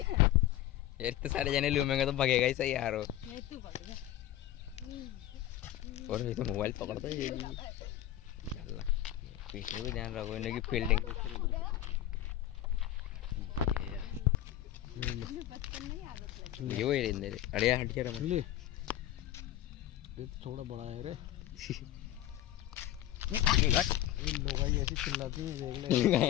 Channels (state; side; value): quieter; right; 13.2 dB